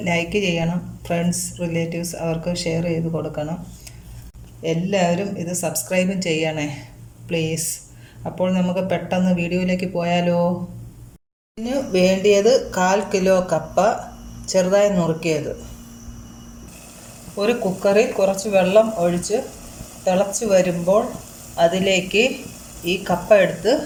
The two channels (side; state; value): both; identical; correlation 1.00